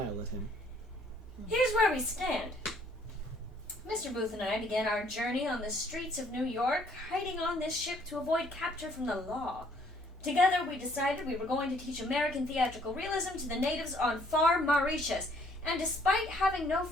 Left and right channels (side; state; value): both; normal; correlation 0.63